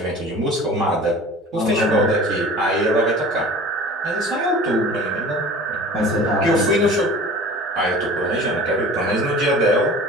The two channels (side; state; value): both; normal; correlation 0.41